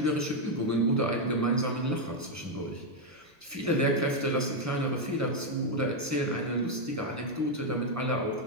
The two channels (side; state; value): both; normal; correlation 0.02